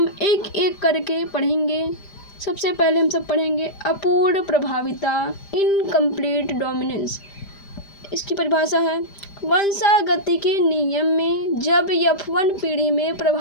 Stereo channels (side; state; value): right; late; 5.0 ms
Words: एक एक करके पढ़ेंगे। सबसे पहले हम सब पढ़ेंगे अपूर्ण प्रभाविता, इनकम्प्लीट डोमिनेंस। इसकी परिभाषा है, वंशागति के नियम में जब F1 पीढ़ी में